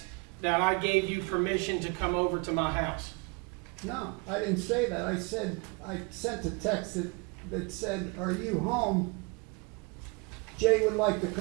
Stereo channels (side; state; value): left; quieter; 30.4 dB